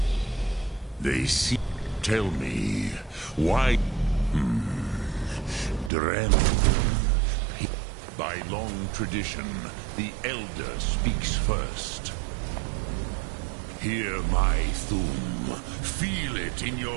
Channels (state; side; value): drops out; left; at 5.9 s